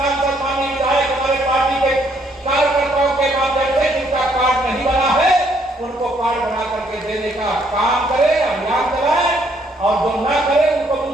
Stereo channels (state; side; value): normal; both; correlation 0.69